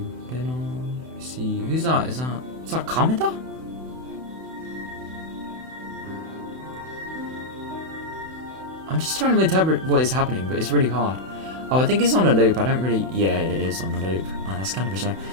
Reno. See who's that? Is that Kameda? I'm just trying to interpret what is happening, but it's really hard. Oh, I think it's on a loop. I don't really... Yeah, it is on a loop. Oh, that's kind of a shame.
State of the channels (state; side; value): late; left; 31 ms